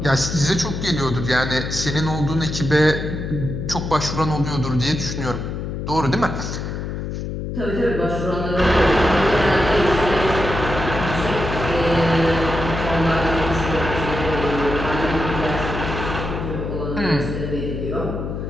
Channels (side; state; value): left; noise; hum, 5 dB below the sound